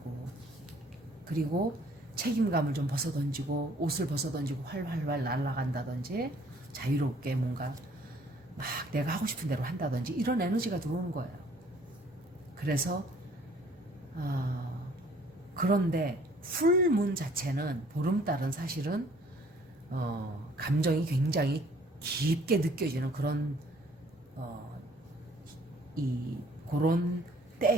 그리고 책임감을 좀 벗어던지고 옷을 벗어던지고 활활활 날아간다든지 자유롭게 뭔가 막 내가 하고 싶은 대로 한다든지 이런 에너지가 들어오는 거예요. 그래서 그런데 풀문 자체는 보름달은 사실은 감정이 굉장히 깊게 느껴지는 그런 그런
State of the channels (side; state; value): both; normal; correlation 0.58